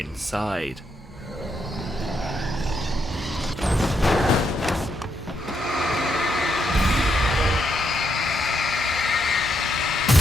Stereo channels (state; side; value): normal; both; correlation 0.78